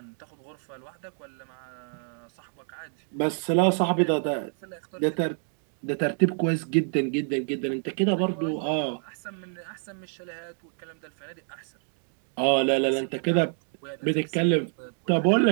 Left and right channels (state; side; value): silent; left; 57 dB below the other